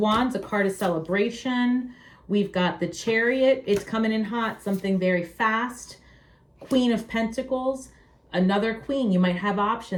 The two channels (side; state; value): both; identical; correlation 1.00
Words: a card of celebration. We've got the Chariot. It's coming in hot, something very fast. Queen of Pentacles. Another queen. You might have